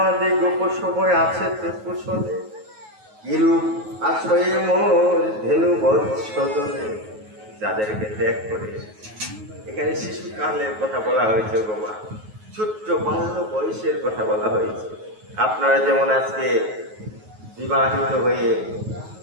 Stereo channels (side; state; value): left; late; 9.3 ms